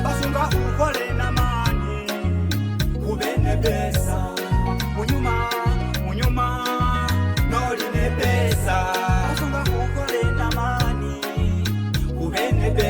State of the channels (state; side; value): identical; both; correlation 1.00